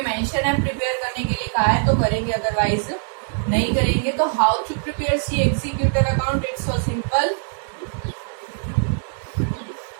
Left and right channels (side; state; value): left; silent; digital silence